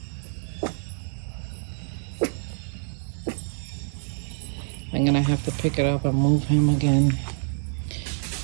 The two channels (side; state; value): left; silent; digital silence